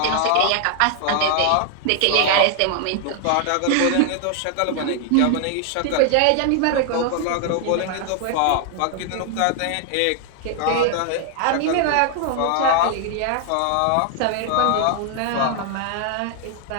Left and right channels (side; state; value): both; different; correlation 0.00